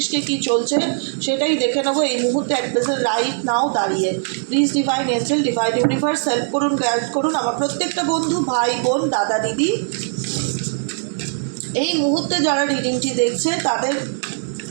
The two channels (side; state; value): left; silent; 66 dB below the other